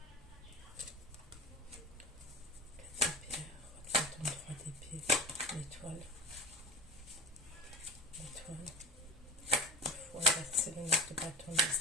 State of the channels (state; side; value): normal; both; correlation 0.35